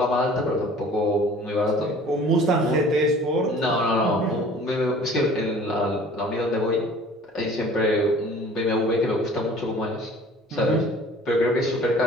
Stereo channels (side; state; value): both; normal; correlation 0.48